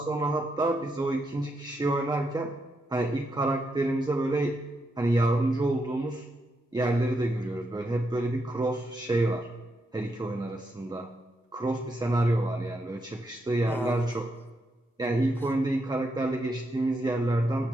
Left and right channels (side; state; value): both; normal; correlation 0.82